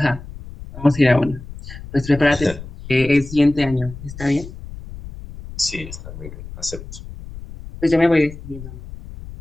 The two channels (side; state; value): left; noise; rumble, 14 dB below the sound